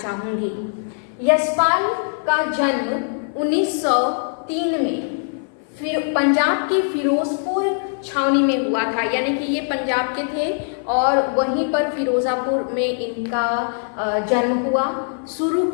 यशपाल का जन्म 1903 में पंजाब के फिरोजपुर छावनी में हुआ था, यानी कि ये पंजाब के थे और वहीं पर फिरोजापुर में इनका जन्म हुआ। शुरू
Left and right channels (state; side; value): silent; right; 56 dB below the other